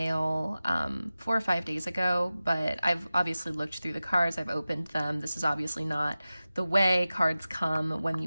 4 or 5 days ago, but I've obviously looked through the cards, I've opened them. This is obviously not the way cards come when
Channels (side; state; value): both; inverted; correlation -0.96